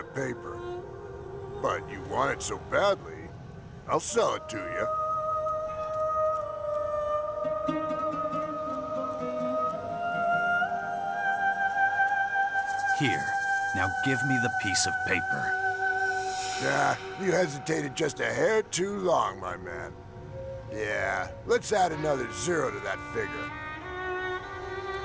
paper. But you want it so badly, I'll sell it to you. Here. Now give me the piece of paper. Nah, you hesitated just a hair too long, my man. Yeah, let's add another 0 to that figure.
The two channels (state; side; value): identical; both; correlation 1.00